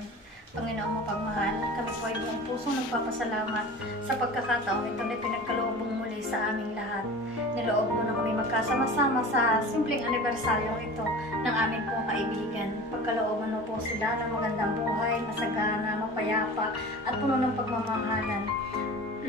Panginoon mo pagmahal. salamat sa pagkakataon ito na pinagkaloob mo muli sa aming lahat. Niloob mo na kami magkasama-sama sa simpleng anibersaryo ito ng aming pong kaibigan. Pagkalooban mo po sila ng magandang buhay, masagana, mapayapa at puno ng pagmamahalan.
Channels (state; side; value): normal; both; correlation 0.36